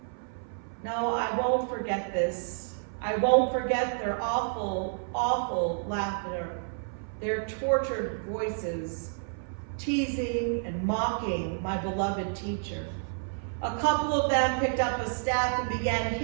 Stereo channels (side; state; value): left; silent; 58 dB below the other